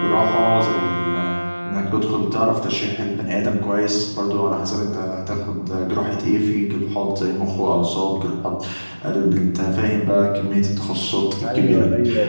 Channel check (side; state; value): both; inverted; correlation -1.00